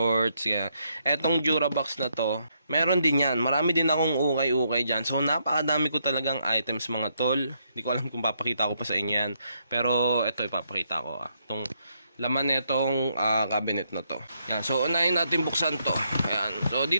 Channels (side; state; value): both; inverted; correlation -0.76